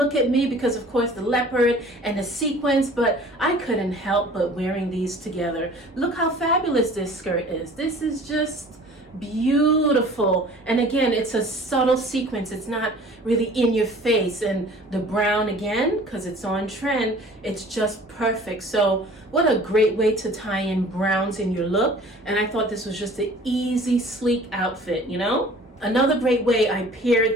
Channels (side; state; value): both; normal; correlation 0.48